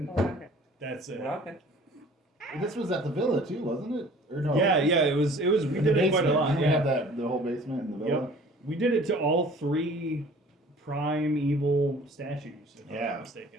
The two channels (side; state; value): both; normal; correlation 0.49